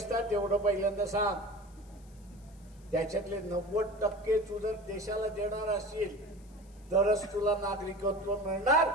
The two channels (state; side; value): noise; left; hiss, 29 dB below the sound